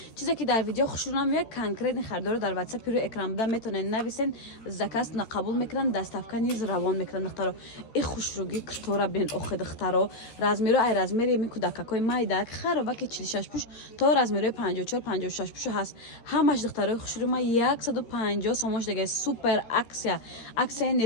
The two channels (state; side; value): late; right; 13 ms